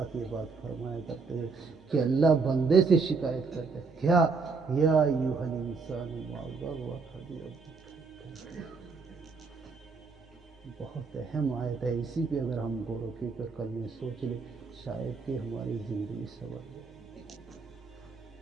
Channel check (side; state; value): left; quieter; 4.6 dB